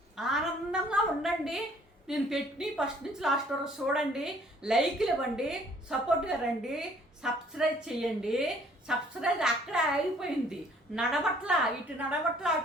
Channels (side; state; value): both; normal; correlation 0.59